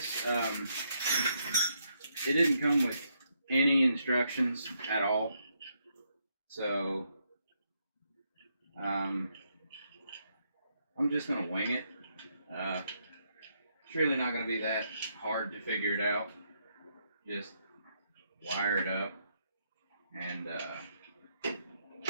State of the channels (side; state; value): both; inverted; correlation -0.77